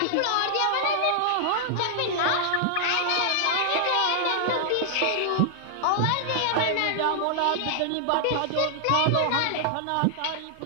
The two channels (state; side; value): different; both; correlation 0.00